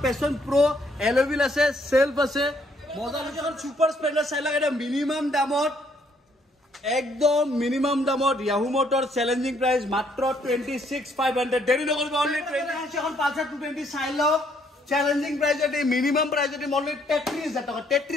Passion Pro এলভিল আছে সেলফ আছে মজা লাগে সুপার স্প্লেন্ডার চাইলক এটা মিনিমাম দামত একদম মিনিমাম দামত ইয়াহু মোটর চ্যালেঞ্জিং প্রাইস মাত্ৰ 26500 দেৰি নকৰিব অনলি 20 এখন পালসার 220 চাইলক চ্যালেঞ্জিং প্রাইসতে মিনিমাম প্রাইসতে অনলি 33000 টাকা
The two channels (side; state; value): both; normal; correlation 0.68